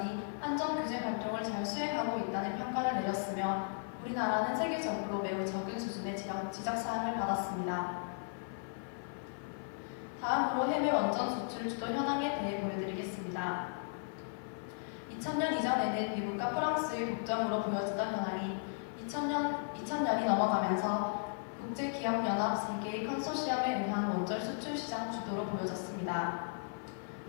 안전규제 활동을 잘 수행하고 있다는 평가를 내렸으며 우리나라는 세계적으로 매우 적은 수준의 지적사항을 받았습니다. 다음으로 해외 원전 수출 주도 현황에 대해 보여드리겠습니다. 2000년 이전에는 미국과 프랑스의 독점으로 보여지던 현황이 2000년이 넘어가면서 국제기업연합 3개의 컨소시엄에 의한 원전 수출 시장 주도로 보여졌습니다.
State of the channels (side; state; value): right; silent; 54 dB below the other